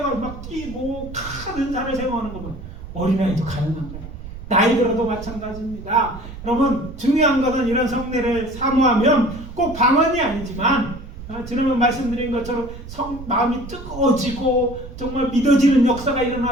막 뛰고 큰 은사를 생각하는 거면 어린아이도 가능한 거예요. 나이 들어도 마찬가지입니다. 여러분, 중요한 것은 이런 성례를 사모하면 꼭 방언이 아니지만 지난번 말씀드린 것처럼 마음이 뜨거워지고 정말 믿어지는 역사가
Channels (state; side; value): noise; right; rumble, 12 dB below the sound